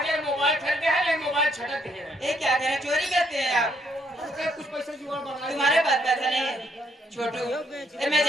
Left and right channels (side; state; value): both; normal; correlation 0.72